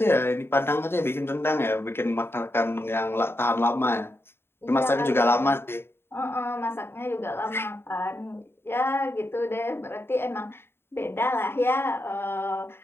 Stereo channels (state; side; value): late; right; 0.11 ms